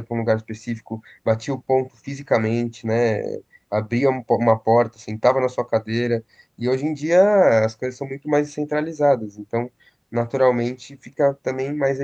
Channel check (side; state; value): both; identical; correlation 1.00